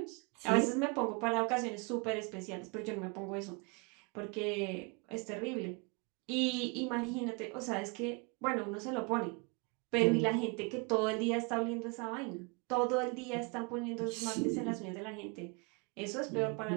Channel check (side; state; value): left; quieter; 31.7 dB